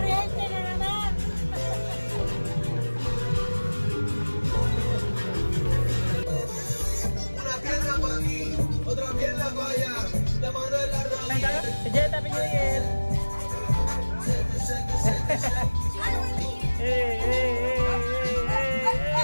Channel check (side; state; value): both; inverted; correlation -1.00